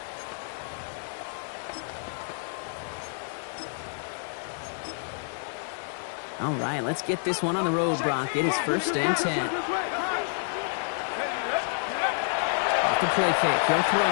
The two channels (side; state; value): right; silent; digital silence